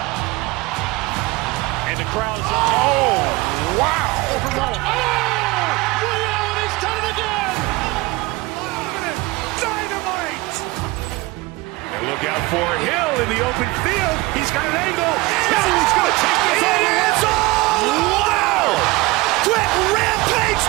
And the crowd is, oh, wow. Ray Allen has done it again. Dynamite. And look out for Hill in the open field. He's got an angle. He's going to take this all the way. Wow. Quick Rampage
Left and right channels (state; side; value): quieter; left; 22.3 dB